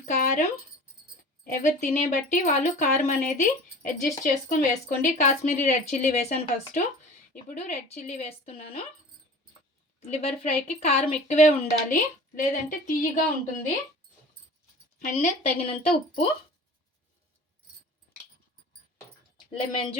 కారం. ఎవరు తినే బట్టి వాళ్ళు కారం అనేది అడ్జస్ట్ చేసుకొని వేసుకోండి. కాశ్మీరీ రెడ్ చిల్లీ వేసాను ఫస్ట్, ఇప్పుడు రెడ్ చిల్లీ వేస్తున్నాను. లివర్ ఫ్రైకి కారం ఎక్కువే ఉండాలి, లేదంటే తీయగా ఉంటుంది. అండ్ తగినంత ఉప్పు, లెమన్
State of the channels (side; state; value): both; normal; correlation 0.40